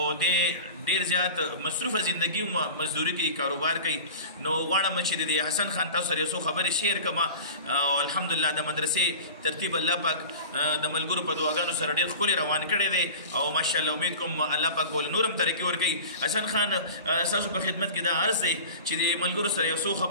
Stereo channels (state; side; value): inverted; both; correlation -0.37